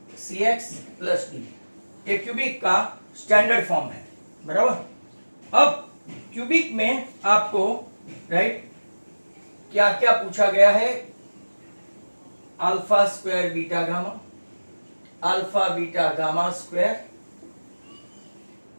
cx plus d। ये क्यूबिक का स्टैंडर्ड फॉर्म है, बराबर। अब क्यूबिक में आपको, राइट, क्या क्या पूछा गया है? Alpha square beta gamma, alpha beta gamma square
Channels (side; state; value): both; inverted; correlation -1.00